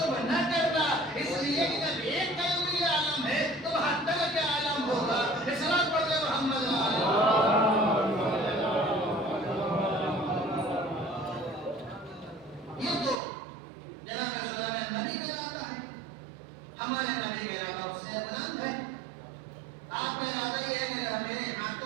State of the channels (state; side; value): drops out; left; at 13.2 s